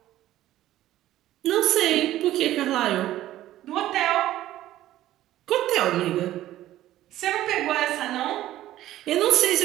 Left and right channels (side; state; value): left; quieter; 14.0 dB